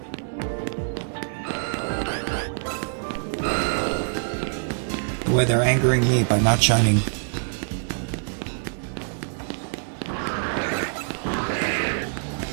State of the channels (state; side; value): silent; left; digital silence